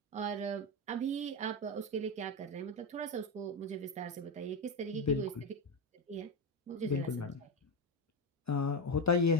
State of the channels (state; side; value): normal; both; correlation 0.12